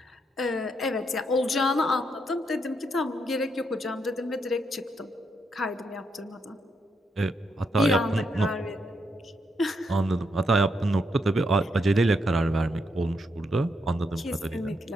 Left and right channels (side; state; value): both; normal; correlation 0.79